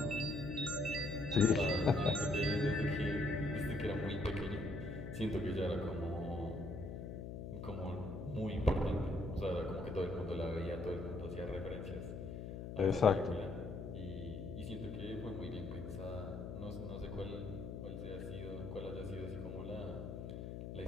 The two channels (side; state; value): left; noise; hum, 7 dB below the sound